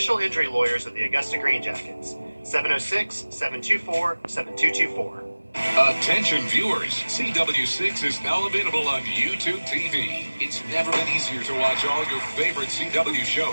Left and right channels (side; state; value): both; inverted; correlation -1.00